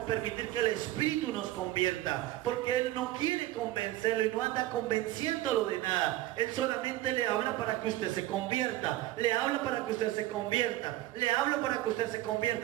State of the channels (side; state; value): left; quieter; 15.6 dB